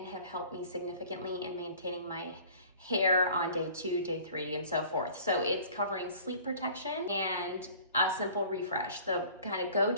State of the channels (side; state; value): both; inverted; correlation -0.48